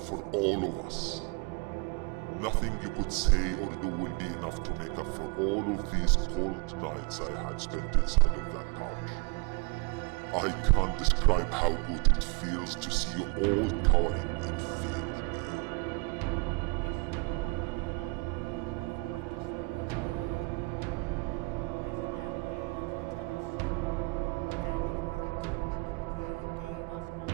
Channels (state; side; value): quieter; left; 29.2 dB